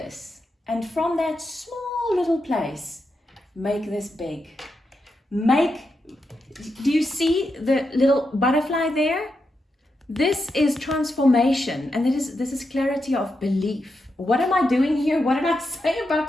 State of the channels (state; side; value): normal; both; correlation 0.86